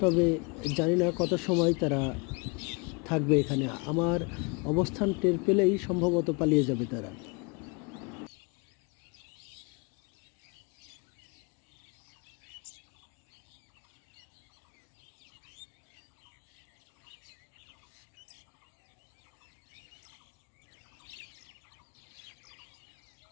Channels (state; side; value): quieter; right; 31.4 dB